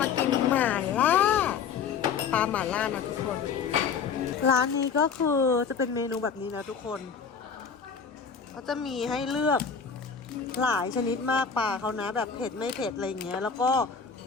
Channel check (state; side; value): quieter; right; 6.2 dB